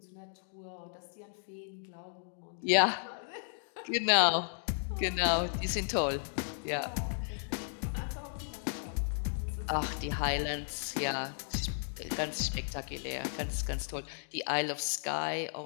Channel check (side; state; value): right; silent; digital silence